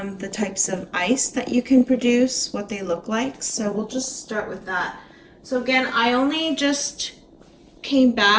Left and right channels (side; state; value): both; identical; correlation 1.00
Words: the types of ice that you can produce, what they look like. So we'll just start with that. So again, I only just came